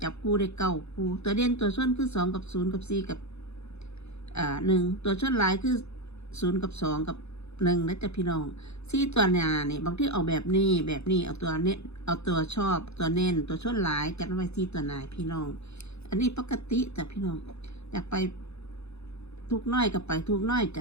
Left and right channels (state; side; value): late; right; 0.80 ms